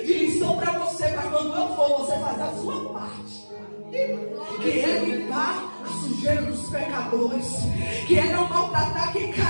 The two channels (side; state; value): both; inverted; correlation -1.00